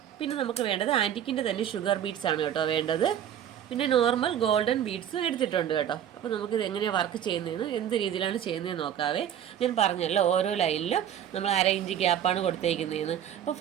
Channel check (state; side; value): quieter; left; 9.9 dB